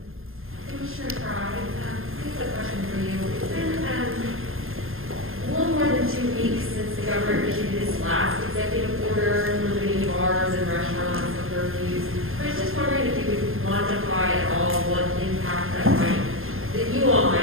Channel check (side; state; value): left; late; 0.60 ms